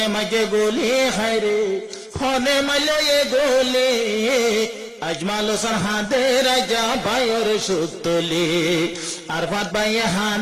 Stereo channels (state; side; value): identical; both; correlation 1.00